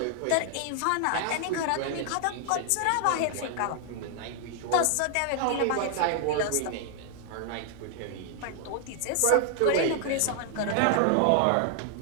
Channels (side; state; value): both; different; correlation 0.00